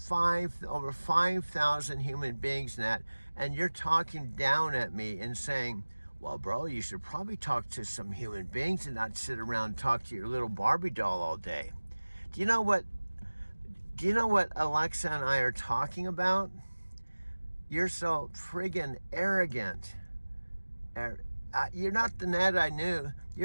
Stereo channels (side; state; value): both; inverted; correlation -1.00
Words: over 5,000 human beings, Nat, and you're talking down at me and saying, well, bro, you should probably talk to some human beings and not sit around and talk to your little Barbie doll all day. Do you know what Alexa and I are talking about? You're so friggin' arrogant. You're not the Nat I knew.